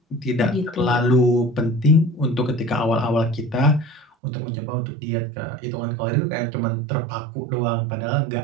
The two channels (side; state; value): left; drops out; at 4.0 s